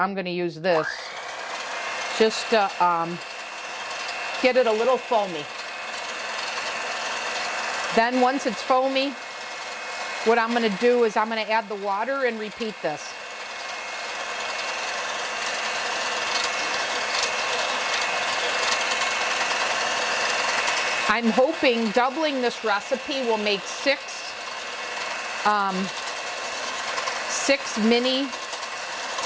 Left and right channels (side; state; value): both; identical; correlation 1.00